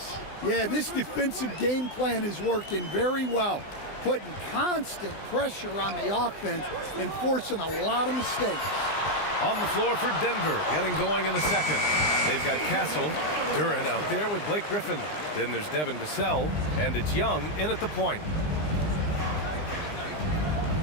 Yeah, this defensive game plan is working very well, putting constant pressure on the offense and forcing a lot of mistakes. On the floor for Denver, getting going in the second. They've got Castle, Duran out there with Blake Griffin. Then there's Devin Vassell, and it's Young in at the point.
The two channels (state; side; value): late; right; 20 ms